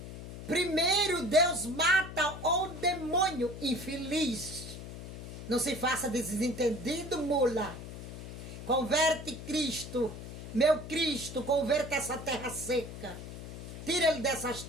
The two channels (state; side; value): noise; left; hum, 11 dB below the sound